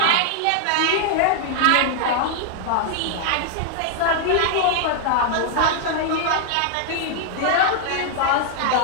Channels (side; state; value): both; different; correlation 0.00